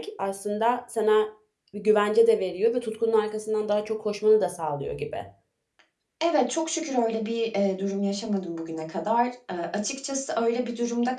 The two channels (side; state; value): both; identical; correlation 1.00